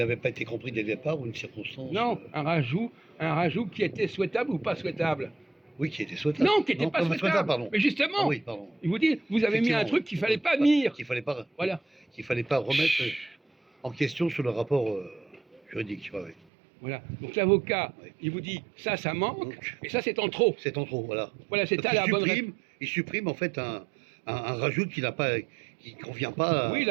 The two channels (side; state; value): left; drops out; at 16.4 s